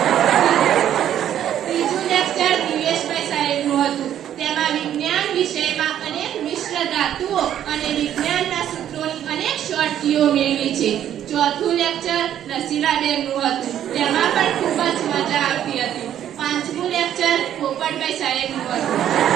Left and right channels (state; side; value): quieter; left; 10.7 dB